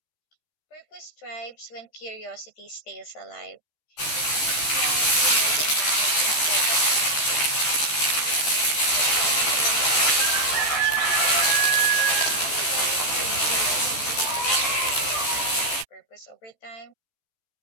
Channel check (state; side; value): late; right; 13 ms